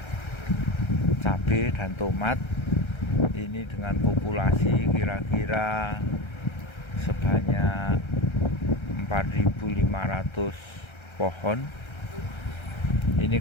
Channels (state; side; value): late; right; 1.3 ms